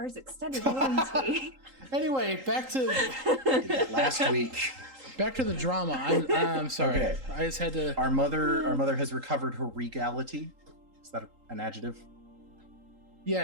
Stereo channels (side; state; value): left; late; 3.8 ms